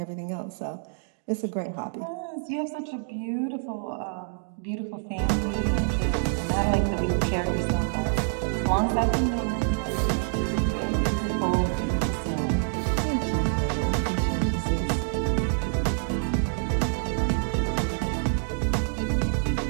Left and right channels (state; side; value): silent; left; digital silence